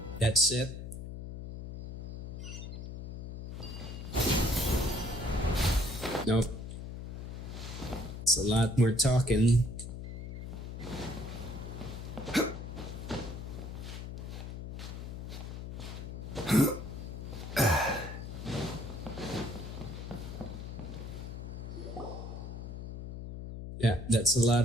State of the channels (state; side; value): noise; left; hum, 8 dB below the sound